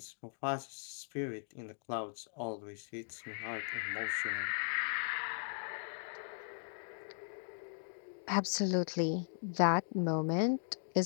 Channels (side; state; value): right; silent; digital silence